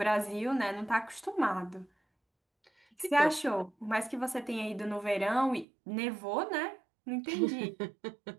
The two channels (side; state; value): left; drops out; at 5.7 s